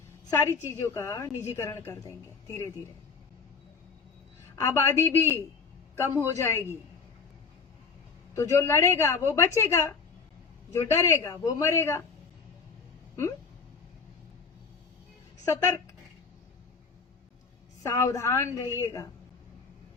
सारी चीजों का निजीकरण कर देंगे धीरे धीरे। आबादी भी कम हो जाएगी, तो जो लड़ेगा वो बचेगा, जो डरेगा वो मरेगा। सतर्क, सावधान रहिएगा,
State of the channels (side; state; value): right; quieter; 5.2 dB